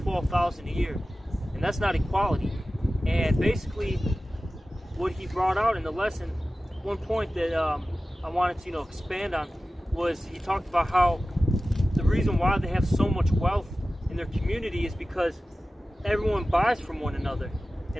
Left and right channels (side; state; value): both; normal; correlation 0.95